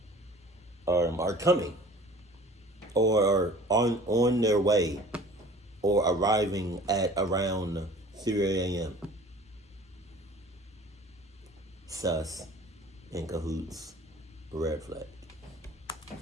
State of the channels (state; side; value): normal; both; correlation 0.46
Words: are coming, or on their way, or arriving at around 3 a.m.? Sus, in cahoots, red flag.